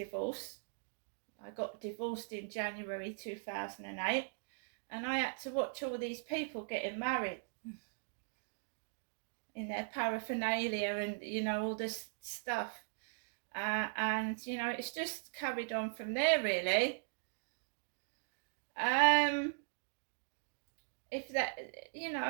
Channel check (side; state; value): left; silent; digital silence